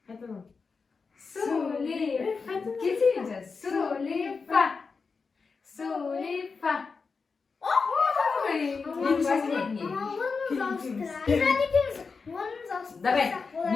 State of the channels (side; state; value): right; quieter; 4.8 dB